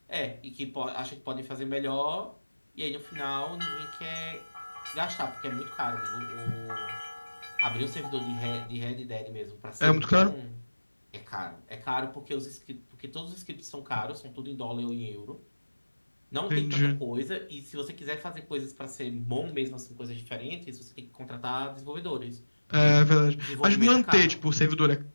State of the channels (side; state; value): both; inverted; correlation -1.00